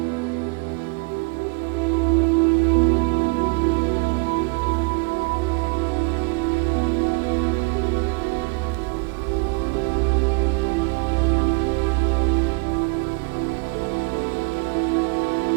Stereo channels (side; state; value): left; quieter; 31.0 dB